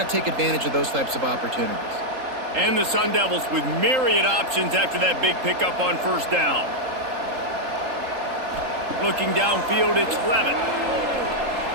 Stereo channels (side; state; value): left; late; 3.8 ms